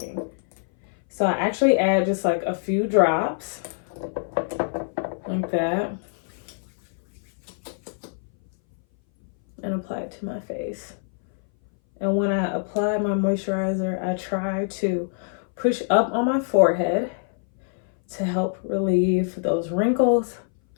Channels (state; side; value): silent; right; 60 dB below the other